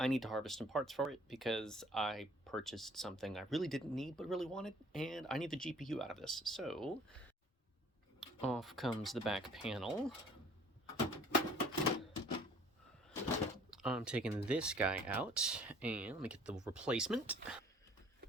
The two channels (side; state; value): both; normal; correlation 0.54